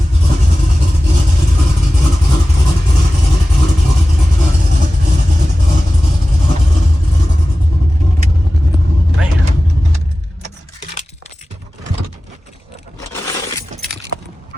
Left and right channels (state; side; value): normal; both; correlation 0.96